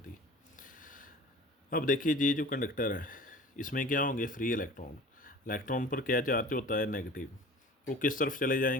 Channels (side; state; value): both; normal; correlation 0.42